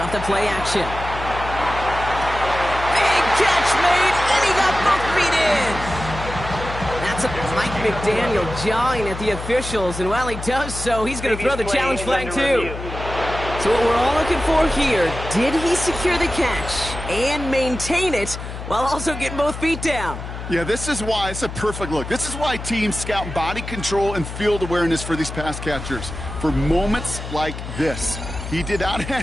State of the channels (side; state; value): left; noise; hum, 9 dB below the sound